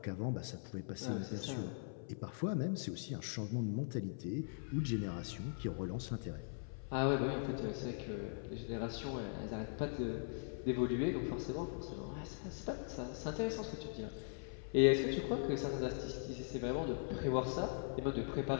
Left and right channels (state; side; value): silent; right; 51 dB below the other